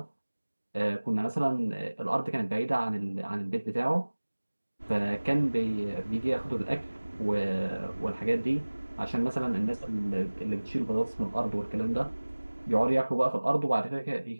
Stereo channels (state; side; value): inverted; both; correlation -1.00